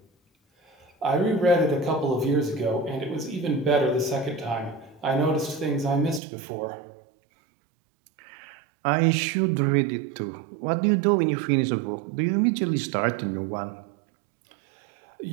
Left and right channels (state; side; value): drops out; left; at 6.2 s